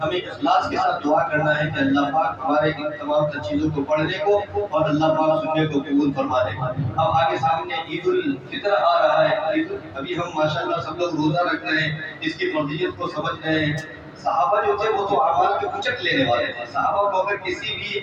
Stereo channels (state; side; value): identical; both; correlation 1.00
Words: ہمیں اخلاص کے ساتھ دعا کرنا ہے کہ اللہ پاک ہمارے ان تمام تر چیزوں کو پڑھنے کو اور اللہ پاک سننے کو قبول فرما دے۔ اب آگے سامنے عید الفطر آ رہا ہے، ابھی ہم ماشاءاللہ سب لوگ روزہ رکھ رہے ہیں، اس کی فضیلت کو سمجھ رہے ہیں۔ صحابہ جو تھے وہ تو اعمال کے اچک لینے والے تھے، صحابہ کو اگر کسی بھی